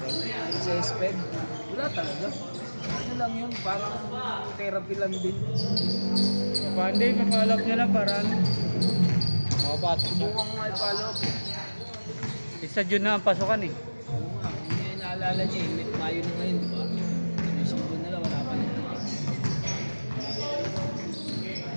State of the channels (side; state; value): both; inverted; correlation -1.00